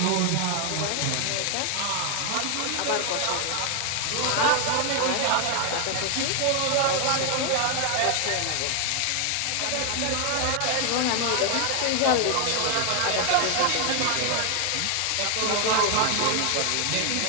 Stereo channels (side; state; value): both; different; correlation 0.00